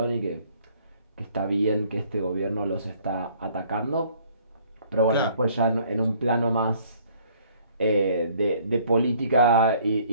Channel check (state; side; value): inverted; both; correlation -0.59